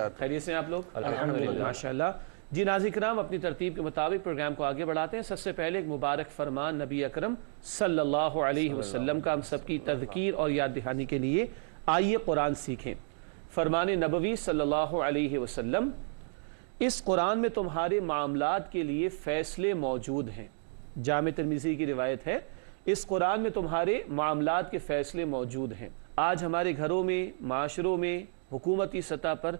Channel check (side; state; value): left; silent; 57 dB below the other